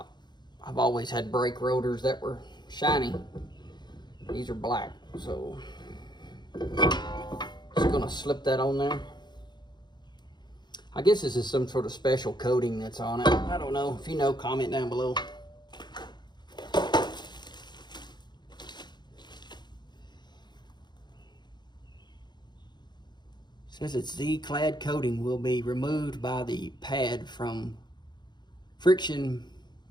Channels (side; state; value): right; late; 0.21 ms